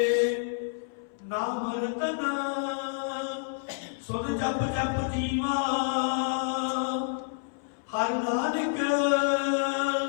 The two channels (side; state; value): right; silent; 59 dB below the other